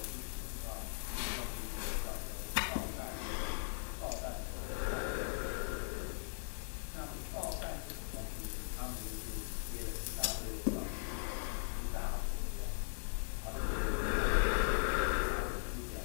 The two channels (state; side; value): silent; right; digital silence